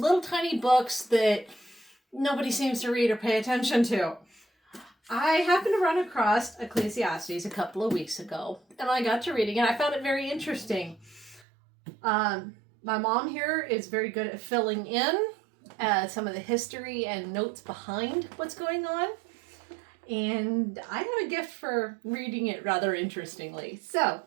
tiny books that nobody seems to read or pay attention to. I happened to run across Ecclesiastes a couple of weeks ago, and I got to reading it. I found it very interesting. My mom here is very good at filling in some of the history and notes behind what's going on. And I have a gift for reading it rather interestingly. So,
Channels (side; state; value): left; drops out; at 11.4 s